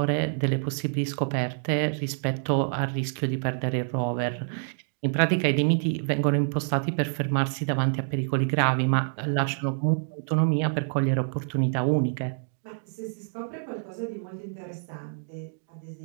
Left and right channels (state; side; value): silent; left; digital silence